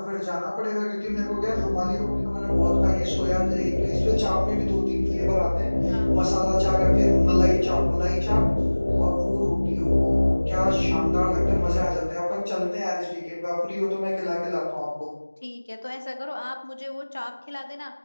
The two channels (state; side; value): inverted; both; correlation -1.00